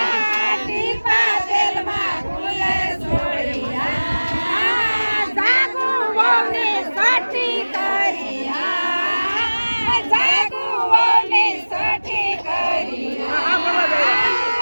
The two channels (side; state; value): both; inverted; correlation -1.00